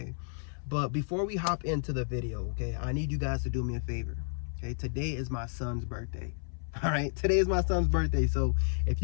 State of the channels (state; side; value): silent; right; 57 dB below the other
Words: But before we hop into the video, okay, I need you guys to do me a favor, okay? Today is my son's birthday. All right, today is my son's birthday. So if